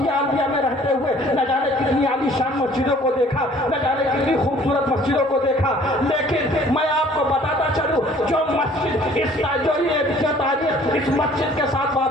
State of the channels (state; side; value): normal; both; correlation 0.55